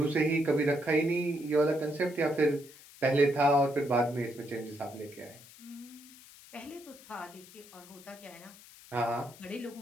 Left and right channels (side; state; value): left; noise; hiss, 21 dB below the sound